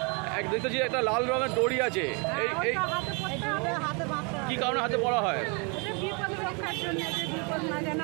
এক দেখতেছি একটা লাল রঙের দড়ি আছে, এই কি কারণে হাতে পড়া হয়?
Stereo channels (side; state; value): left; quieter; 33.6 dB